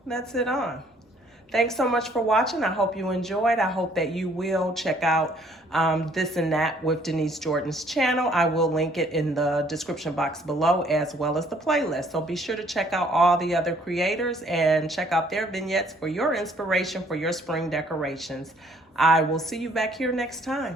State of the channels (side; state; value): both; normal; correlation 0.62